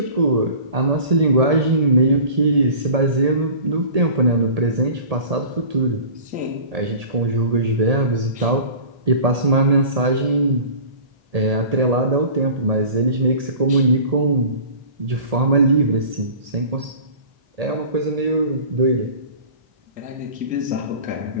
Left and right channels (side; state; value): left; late; 1.8 ms